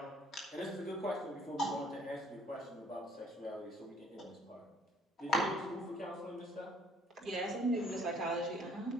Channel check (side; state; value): both; normal; correlation 0.59